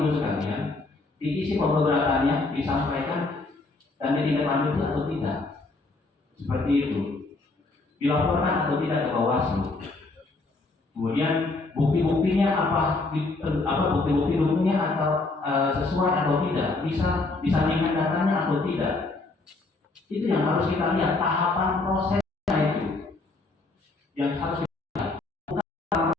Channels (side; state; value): right; quieter; 3.4 dB